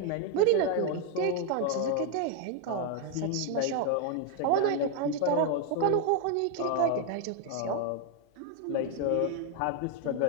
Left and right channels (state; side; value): different; both; correlation 0.00